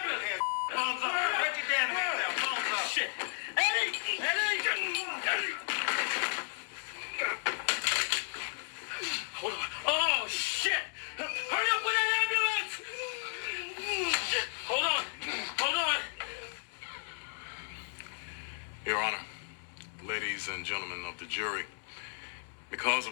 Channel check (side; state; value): right; silent; digital silence